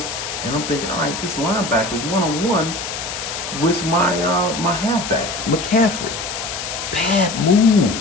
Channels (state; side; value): noise; left; hiss, 6 dB below the sound